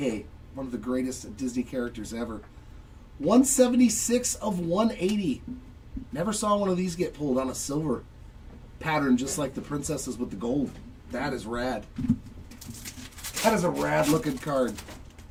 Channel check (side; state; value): both; identical; correlation 1.00